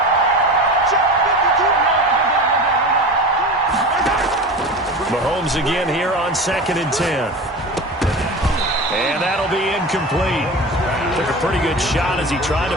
Mahomes again here on 2nd and 10. And that'll be incomplete. Took a pretty good shot as he tried to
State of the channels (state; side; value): normal; both; correlation 0.30